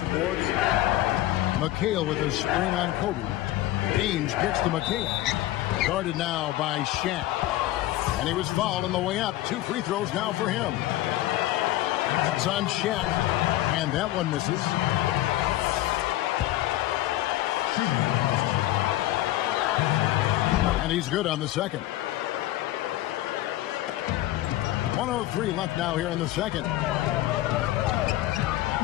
boards? McHale with a screen on Kobe. Ainge gets to McHale. Guarded now by Shaq. And he was fouled on the way up. 2 free throws now for him. That's on Shaq. And that one misses. And he's good on the second. 1:03 left now here in the second.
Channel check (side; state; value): right; quieter; 15.1 dB